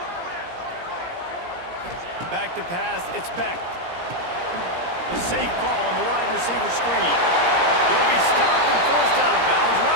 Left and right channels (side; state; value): left; late; 17 ms